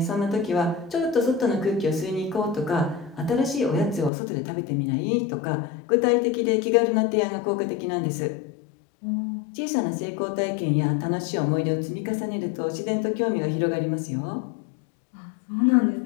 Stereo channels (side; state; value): right; drops out; at 4.1 s